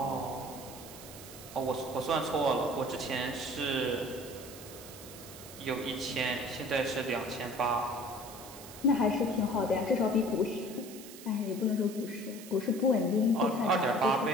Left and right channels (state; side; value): noise; right; hiss, 15 dB below the sound